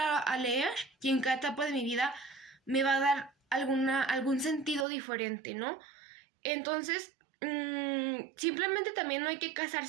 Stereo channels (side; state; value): left; drops out; at 4.9 s